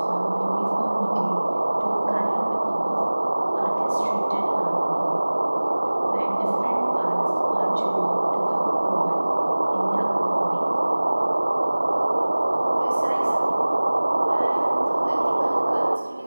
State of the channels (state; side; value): inverted; both; correlation -1.00